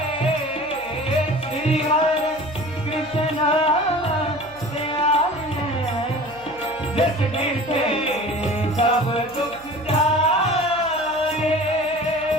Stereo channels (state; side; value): noise; right; hum, 24 dB below the sound